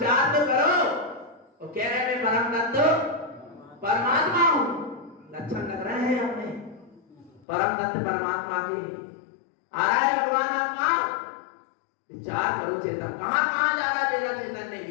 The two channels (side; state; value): right; drops out; at 7.5 s